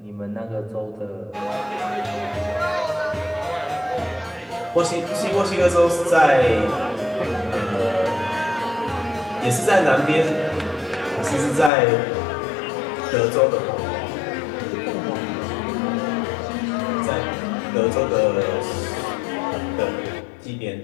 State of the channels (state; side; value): drops out; right; at 11.7 s